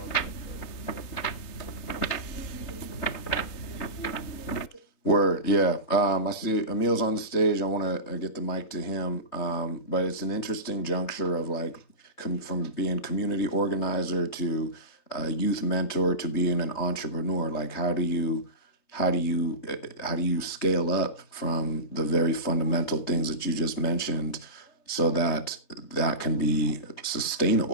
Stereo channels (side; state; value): right; late; 3.8 ms